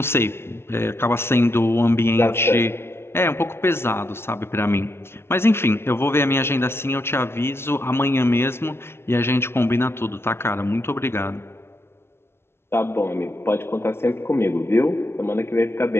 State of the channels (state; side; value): late; right; 0.12 ms